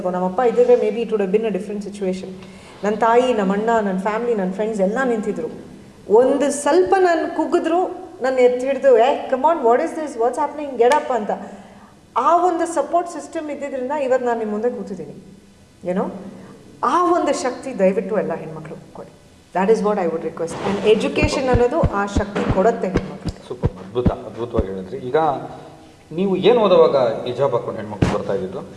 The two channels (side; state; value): both; identical; correlation 1.00